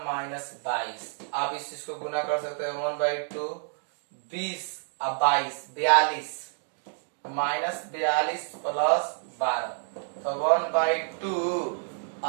-22। आप इस चीज को गुना कर सकते हैं। 1/2 20 और 22 42 -42 + 12, तो 1/2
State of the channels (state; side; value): silent; left; 59 dB below the other